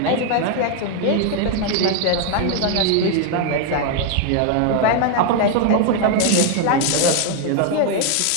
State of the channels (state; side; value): different; both; correlation 0.01